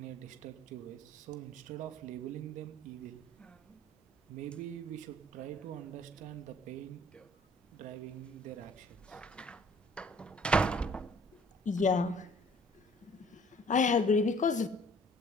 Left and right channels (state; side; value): normal; both; correlation 0.54